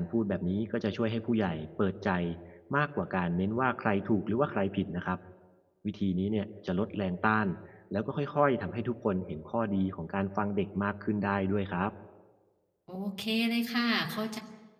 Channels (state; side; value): identical; both; correlation 1.00